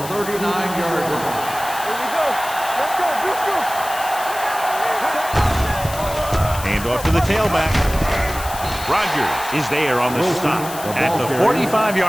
39-yard line. Here we go. Let's go. Let's go. Hand off to the tailback. Rogers is there on the stop at the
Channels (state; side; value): noise; left; hiss, 12 dB below the sound